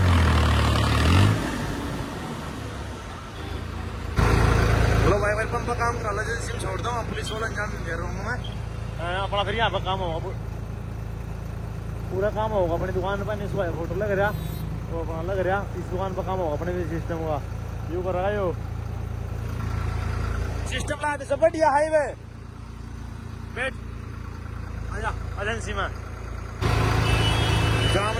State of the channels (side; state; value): both; identical; correlation 1.00